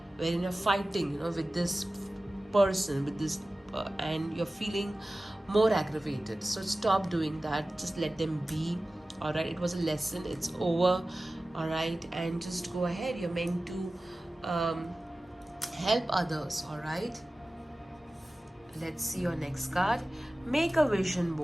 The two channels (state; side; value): normal; both; correlation 0.96